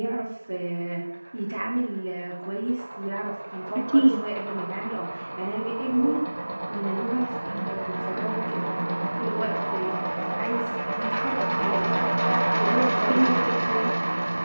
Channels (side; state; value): both; inverted; correlation -1.00